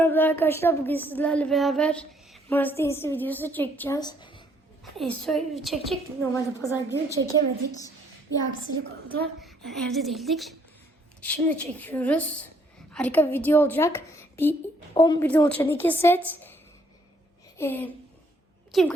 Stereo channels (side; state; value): both; normal; correlation 0.67